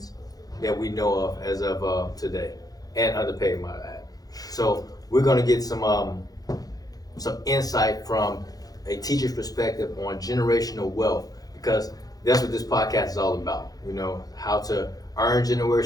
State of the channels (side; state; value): right; late; 0.18 ms